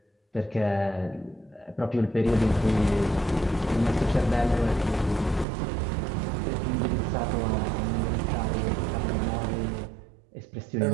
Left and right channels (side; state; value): left; drops out; at 5.5 s